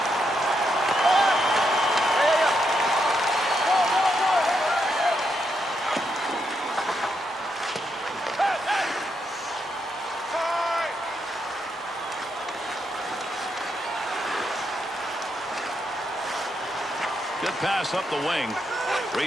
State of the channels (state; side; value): normal; both; correlation 0.80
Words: Good pass up the wing.